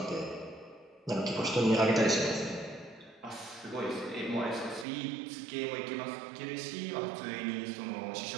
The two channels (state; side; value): drops out; left; at 4.9 s